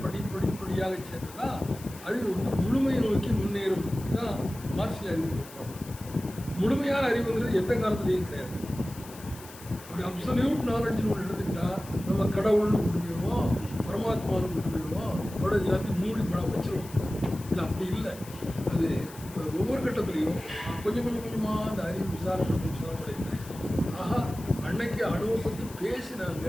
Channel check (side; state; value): left; noise; hiss, 18 dB below the sound